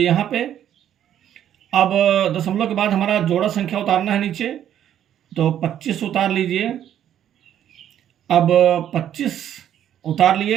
यहाँ पे। अब दशमलव के बाद हमारा जोड़ा संख्या उतारना है नीचे, तो 25 उतार लीजिए। अब 25 उतार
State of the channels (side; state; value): left; quieter; 10.6 dB